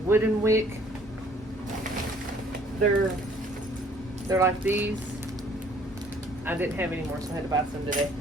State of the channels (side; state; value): both; normal; correlation 0.59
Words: wooden wick. They're like these. I didn't have any more, so I had to buy some today.